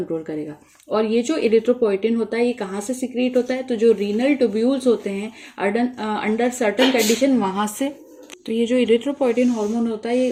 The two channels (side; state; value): both; identical; correlation 1.00